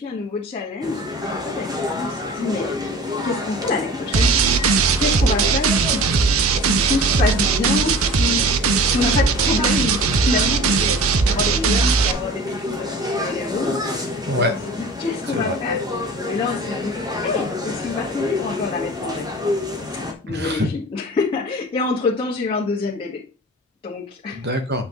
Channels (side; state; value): both; normal; correlation 0.40